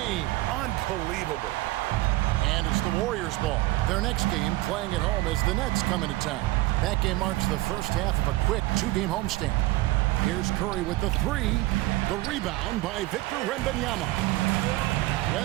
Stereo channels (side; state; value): left; quieter; 18.7 dB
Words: Unbelievable. And it's the Warriors' ball. Their next game, playing at home, as the Nets come into town. That game marks the first half of a quick 2-game homestand. Here's Curry with the 3. The rebound by Victor Wembanyama.